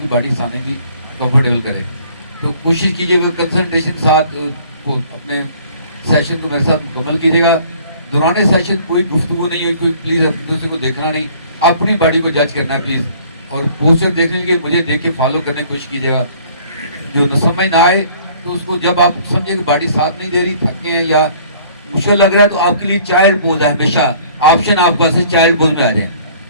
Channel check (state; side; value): inverted; both; correlation -0.54